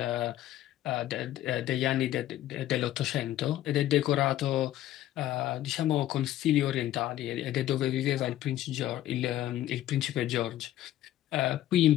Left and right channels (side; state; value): right; quieter; 13.3 dB